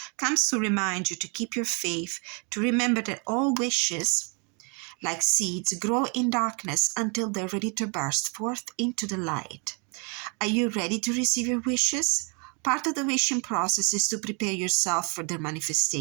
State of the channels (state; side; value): quieter; left; 34.6 dB